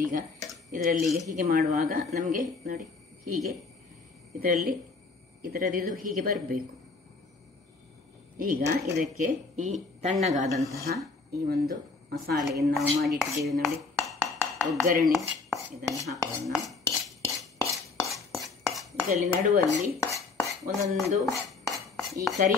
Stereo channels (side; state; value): right; quieter; 4.1 dB